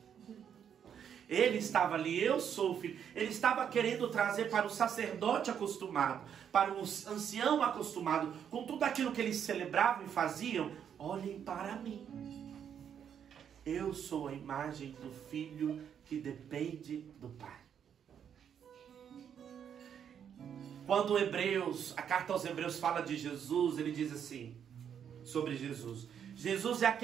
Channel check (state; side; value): quieter; left; 8.4 dB